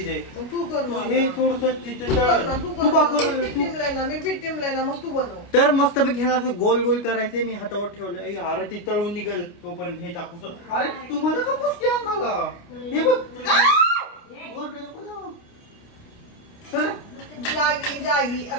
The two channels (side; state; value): right; late; 29 ms